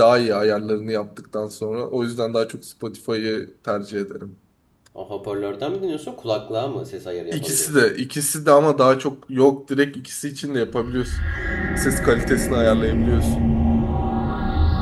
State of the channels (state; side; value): identical; both; correlation 1.00